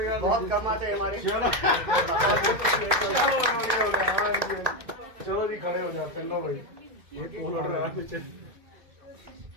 बहुत कमाते हैं हमारे। चलो जी, खड़े हो जाते हैं। लो भाई, ये पोल उड़ रहा है नीचे।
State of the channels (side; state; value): left; late; 2.1 ms